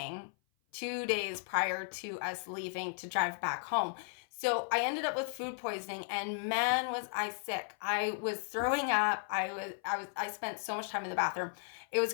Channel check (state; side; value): silent; right; 54 dB below the other